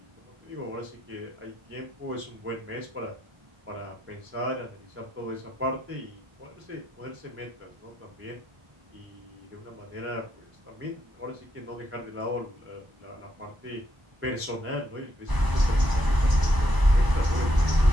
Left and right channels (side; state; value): left; late; 1.0 ms